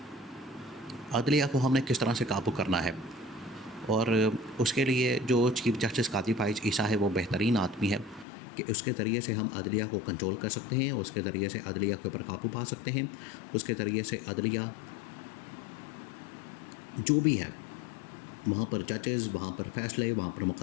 अदलिया को हमने किस तरह से काबू करना है। और उसके लिए जो चीफ़ जस्टिस काजी फ़ाइज़ ईसा है वो बेहतरीन आदमी है कि उसके ज़रिए से हम अदलिया को कंट्रोल कर सकते हैं, उसके ज़रिए से अदलिया के ऊपर काबू पा सकते हैं, उसके ज़रिए से अदलिया जो भी है वहाँ पर जजेस, वहाँ पर फ़ैसले, वहाँ पर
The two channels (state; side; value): drops out; right; at 8.2 s